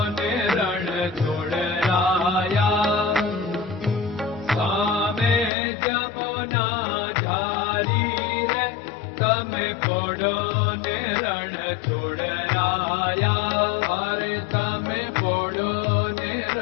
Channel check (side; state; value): right; drops out; at 5.5 s